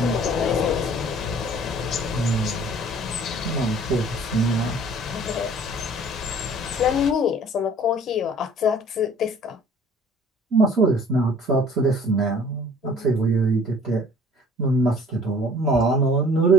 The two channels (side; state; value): both; normal; correlation 0.52